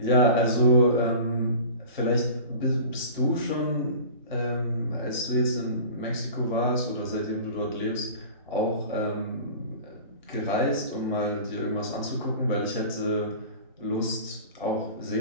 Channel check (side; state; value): both; inverted; correlation -0.38